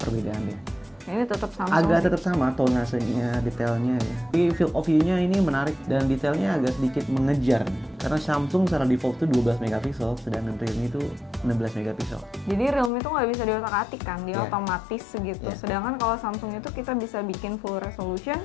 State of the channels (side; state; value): right; drops out; at 12.9 s